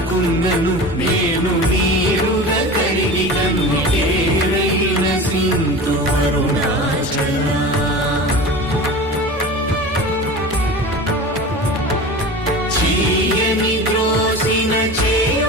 నేను నీరుగ కరిగి కన్నికేరైన సింధు అరుణాచల చీయని ద్రోసిన చేయు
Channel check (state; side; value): normal; both; correlation 0.33